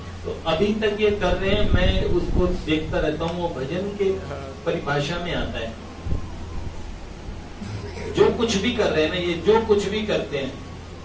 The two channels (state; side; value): identical; both; correlation 1.00